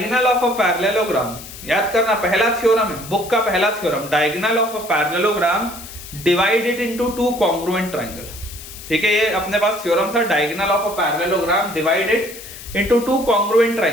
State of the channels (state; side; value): noise; left; hiss, 14 dB below the sound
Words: ऑफ अ पैरेललोग्राम, याद करना, पहला थ्योरम है, बुक का पहला theorem, diagonal of a parallelogram divide it into two congruent triangle, ठीक है, ये अपने पास थ्योरम था, diagonal of a parallelogram divide it into two congruent